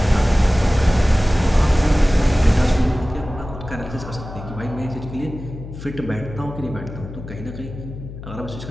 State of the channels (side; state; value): left; noise; hum, 12 dB below the sound